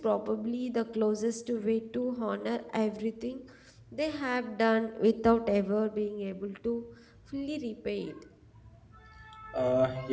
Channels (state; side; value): identical; both; correlation 1.00